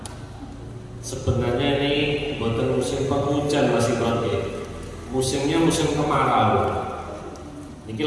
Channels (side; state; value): both; identical; correlation 1.00